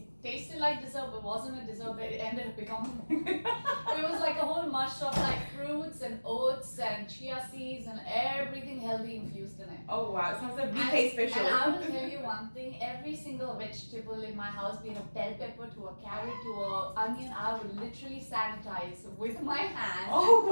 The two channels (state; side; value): inverted; both; correlation -1.00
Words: tasted like dessert, but wasn't a dessert, but it ended up becoming it was like a whole mush of like fruits and oats and chia seeds and everything healthy infused in it. Oh wow, it sounds like BK special. And I will tell you one thing, every single vegetable in my house, be it a bell pepper to a carrot to a onion, I would literally sanitize with my hands. Oh